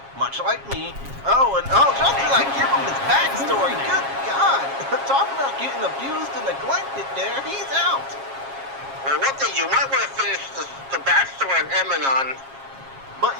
much like me. Oh, and just as I give him his backstory, good God. Talk about getting abused and neglected there, he's out. Well, one thing, you might want to finish the backstory on Emanon. But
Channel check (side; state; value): left; late; 7.4 ms